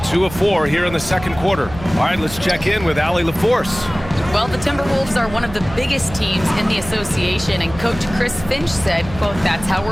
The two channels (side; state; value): right; noise; hum, 14 dB below the sound